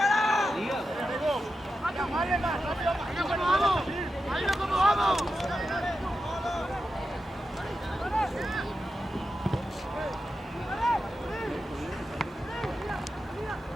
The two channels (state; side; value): normal; both; correlation 0.89